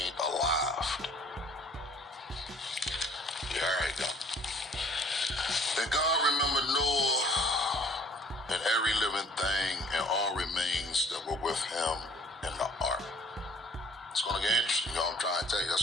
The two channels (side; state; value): both; normal; correlation 0.55